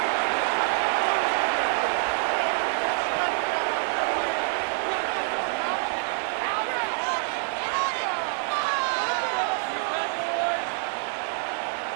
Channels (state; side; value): silent; left; 61 dB below the other